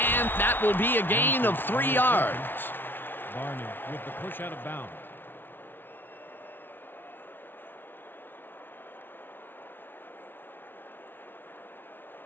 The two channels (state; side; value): late; right; 0.10 ms